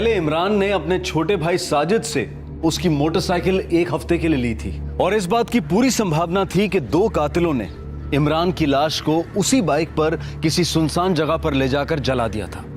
इमरान ने अपने छोटे भाई साजिद से उसकी मोटरसाइकिल 1 हफ्ते के लिए ली थी और इस बात की पूरी संभावना थी कि 2 कातिलों ने इमरान की लाश को उसी बाइक पर किसी सुनसान जगह पर ले जाकर जला दिया था।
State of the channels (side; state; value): both; identical; correlation 1.00